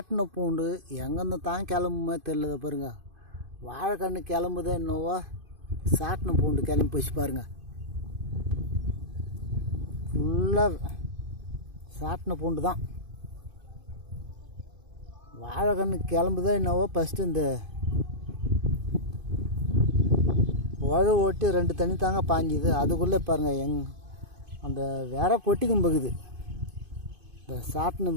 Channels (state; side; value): late; left; 2.5 ms